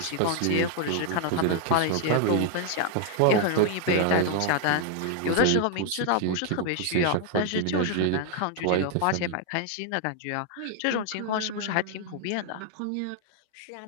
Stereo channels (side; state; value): both; different; correlation 0.00